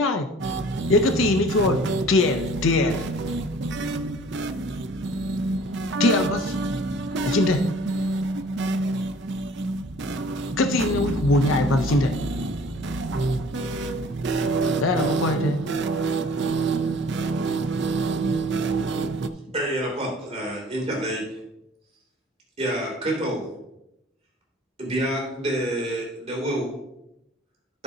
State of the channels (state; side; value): normal; both; correlation 0.50